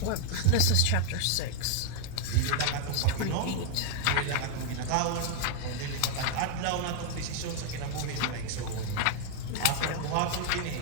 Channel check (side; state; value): both; different; correlation 0.00